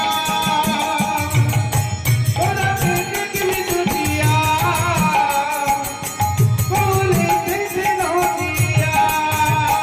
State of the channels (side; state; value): both; identical; correlation 1.00